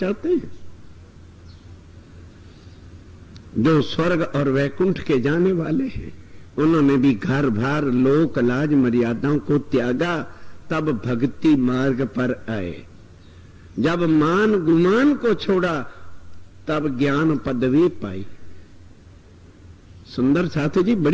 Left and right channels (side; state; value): both; identical; correlation 1.00